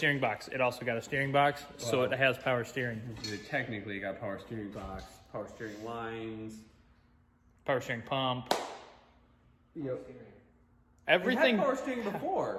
box. It also got a steering box, so it has power steering. Technically, you got power steering box, power steering lines, Power steering pump. Yep. Everything. It had power steering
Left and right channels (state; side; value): identical; both; correlation 1.00